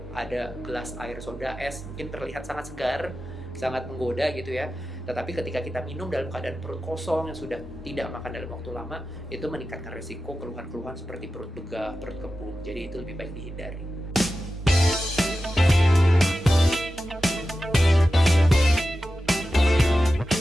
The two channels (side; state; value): both; normal; correlation 0.93